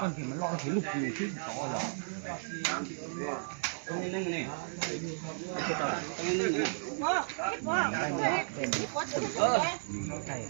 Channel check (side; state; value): left; silent; digital silence